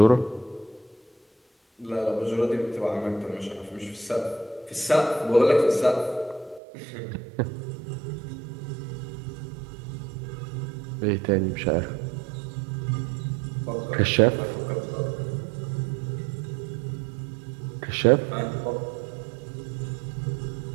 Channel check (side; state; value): left; drops out; at 6.6 s